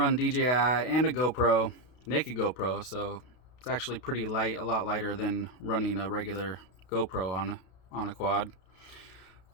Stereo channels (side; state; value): right; late; 32 ms